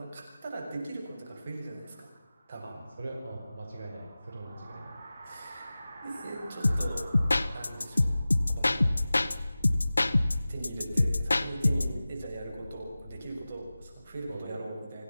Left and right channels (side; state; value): both; inverted; correlation -0.96